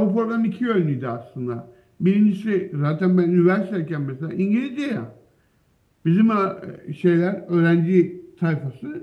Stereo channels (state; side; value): identical; both; correlation 1.00